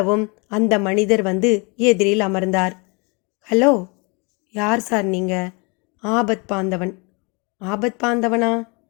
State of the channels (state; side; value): quieter; right; 30.8 dB